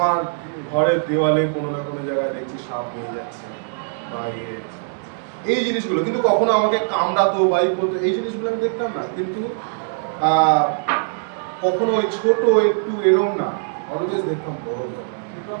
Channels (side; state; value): left; silent; digital silence